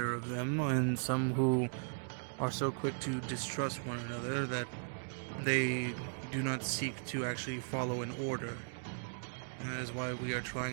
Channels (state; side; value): silent; left; digital silence